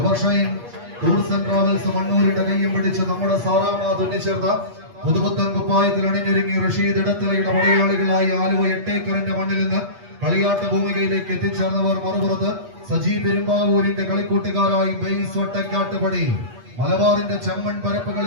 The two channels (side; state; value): left; late; 8.4 ms